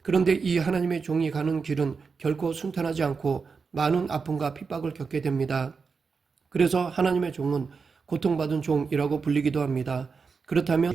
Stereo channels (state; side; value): quieter; left; 5.1 dB